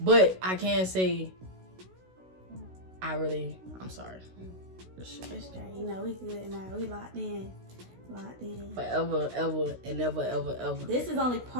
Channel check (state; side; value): late; left; 16 ms